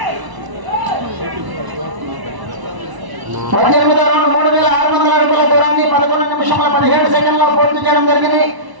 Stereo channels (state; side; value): late; left; 1.0 ms